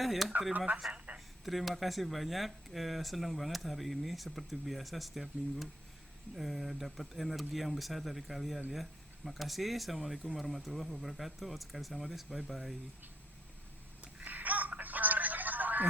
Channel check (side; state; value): both; normal; correlation 0.68